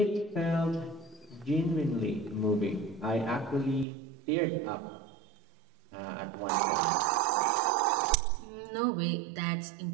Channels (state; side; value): drops out; left; at 3.9 s